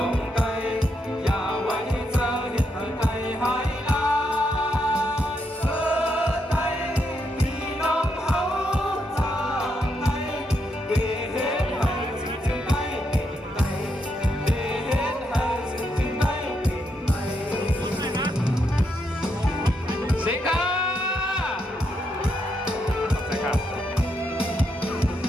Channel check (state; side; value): normal; both; correlation 0.79